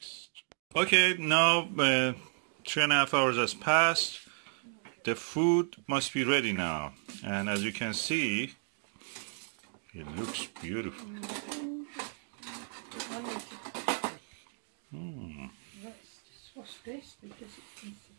Okay, now 3.5 hours has passed. The food must be ready now, and as you can see, it looks beautiful. What's this? Because it's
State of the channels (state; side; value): silent; left; 56 dB below the other